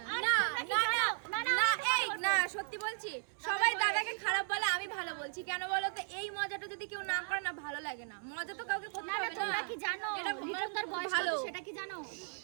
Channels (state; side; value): silent; left; 54 dB below the other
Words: না না না না, এই না সত্যি বলছি, সবাই দাদাকে খারাপ বলে, আমি ভালো বলছি কেন বলো তো? এই মজাটা যদি কেউ না করে না, ভালো লাগে না। মজা তো কাউকে করতে হবে না। তোমরা কি জানো এটা লিটনদার বয়স ভালো। কত সেটা কি জানো?